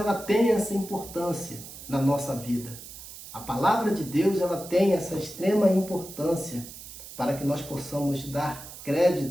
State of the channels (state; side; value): noise; right; hiss, 14 dB below the sound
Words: tem essa importância na nossa vida. A palavra de Deus, ela tem essa extrema importância para que nós possamos dar